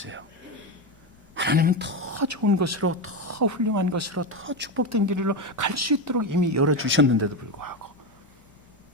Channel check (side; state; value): both; normal; correlation 0.13